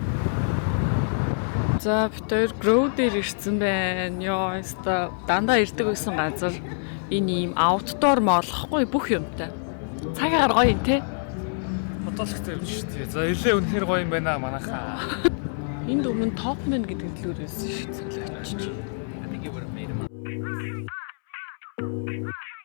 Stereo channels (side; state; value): right; silent; 61 dB below the other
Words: За бид хоёр Grow дээр ирсэн байна. Йоо, өста дандаа ирдэг байсан газар. Энэ ийм outdoor молохгүй бүх юмтай. Цагаар гоё юм те. Бодолхтой юм шүү дээ. За илээ үнэхээр гоё юм байна манайхаа. Энд өмнө Topman гэдэг төлөөрөөс шүү цэлээч.